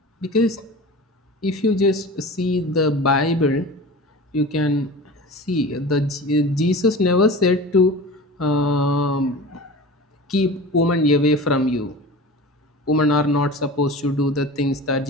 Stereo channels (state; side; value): normal; both; correlation 0.35